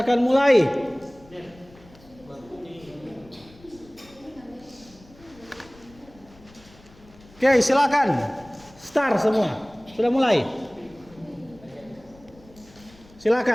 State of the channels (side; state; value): left; noise; rumble, 25 dB below the sound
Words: akan mulai. Oke, silakan. Start semua. Sudah mulai.